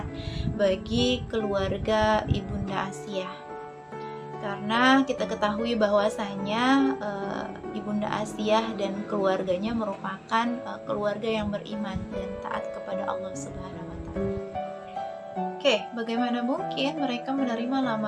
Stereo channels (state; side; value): identical; both; correlation 1.00